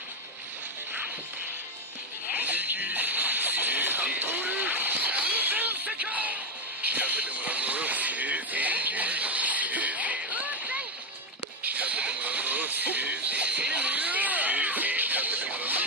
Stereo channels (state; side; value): normal; both; correlation 0.10